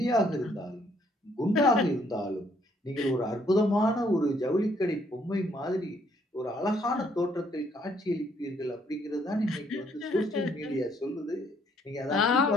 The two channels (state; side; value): normal; both; correlation 0.67